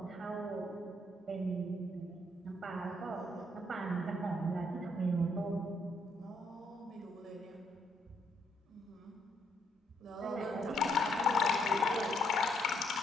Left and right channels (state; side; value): normal; both; correlation 0.72